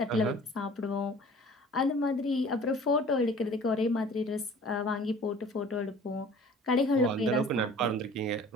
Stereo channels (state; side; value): normal; both; correlation 0.47